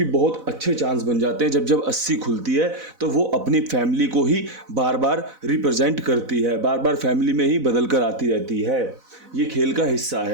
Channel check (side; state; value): left; late; 4.0 ms